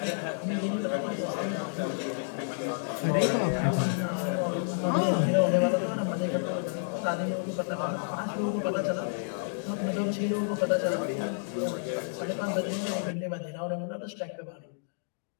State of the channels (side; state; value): right; silent; digital silence